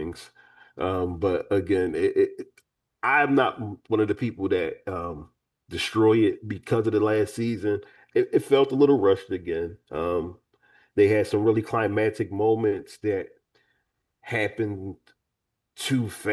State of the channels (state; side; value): identical; both; correlation 1.00